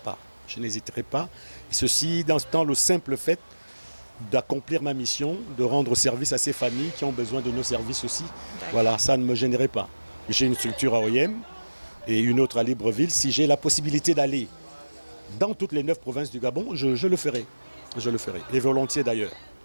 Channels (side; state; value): both; inverted; correlation -1.00